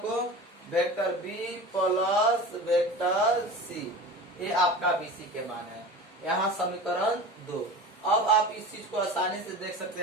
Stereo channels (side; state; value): both; normal; correlation 0.34